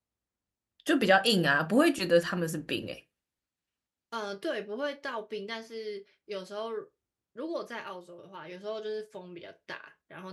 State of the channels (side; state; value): both; identical; correlation 1.00